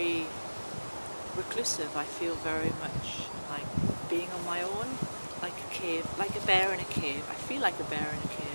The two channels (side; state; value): both; inverted; correlation -1.00